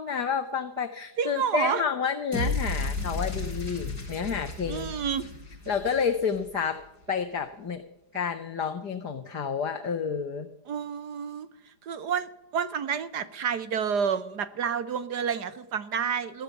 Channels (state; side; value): late; left; 4.9 ms